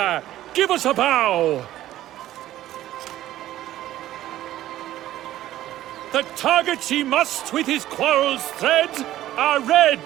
give us a bow. The targets he must with his quarrels thread are red.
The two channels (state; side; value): quieter; left; 13.8 dB